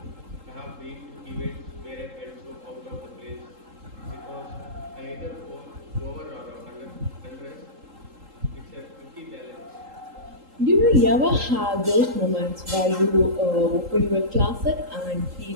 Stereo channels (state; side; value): late; left; 3.8 ms